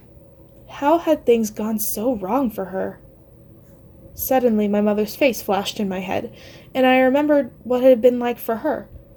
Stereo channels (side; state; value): both; identical; correlation 1.00